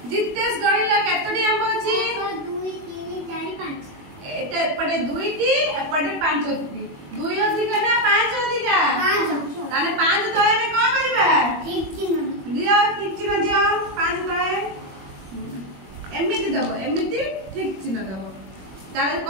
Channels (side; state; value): left; late; 21 ms